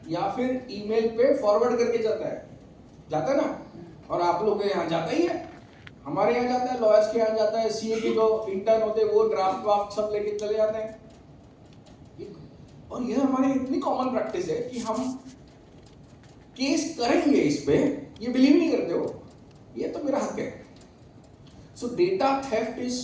या फिर ईमेल पे फॉरवर्ड करके जाता है ना। और आप लोग के यहाँ जाता ही है, हमारे यहाँ जाता है, लॉयर्स के यहाँ जाता है, सीए के जो इंटर्न होते हैं वो ड्राफ्ट सब लेके चले जाते हैं। और यह हमारी इतनी कॉमन प्रैक्टिस है कि हम केस करेंगे इस पे, ये बिलीव नहीं करते हो, ये तो मेरा हक है। So data theft is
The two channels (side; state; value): both; identical; correlation 1.00